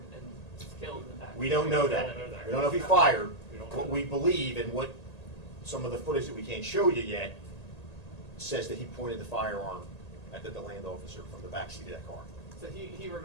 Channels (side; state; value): right; late; 1.8 ms